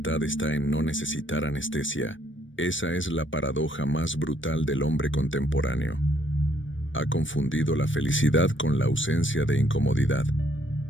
está en no necesitar anestesia. Esa es la paradoja más brutal del hombre contemporáneo. Ha confundido la felicidad con la ausencia de incomodidad.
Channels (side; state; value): right; late; 0.56 ms